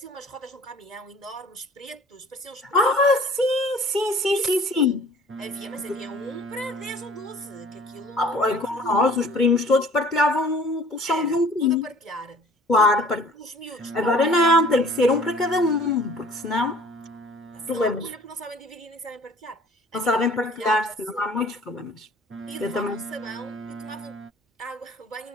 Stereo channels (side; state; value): both; normal; correlation 0.50